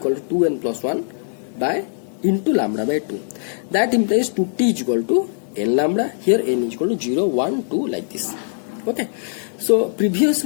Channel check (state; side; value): silent; right; digital silence